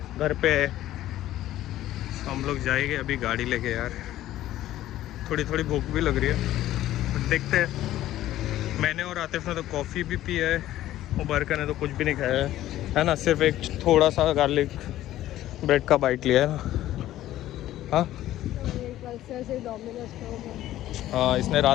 घर पे है। हम लोग जाएंगे अभी गाड़ी लेके यार, थोड़ी थोड़ी भूख भी लग रही है, देखते हैं। मैंने और आतिफ ने तो कॉफ़ी भी पी है, मुबारका ने तो कुछ भी नहीं खाया है ना, सिर्फ एक थोड़ा सा गार्लिक ब्रेड का बाइट लिया है ना। हाँ हाँ, इसने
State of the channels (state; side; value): quieter; right; 13.9 dB